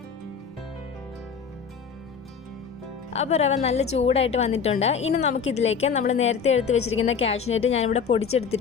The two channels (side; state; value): right; quieter; 6.4 dB